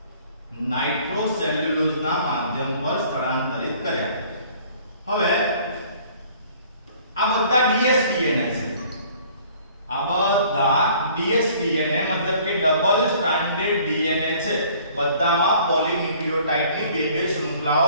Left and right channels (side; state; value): both; inverted; correlation -0.54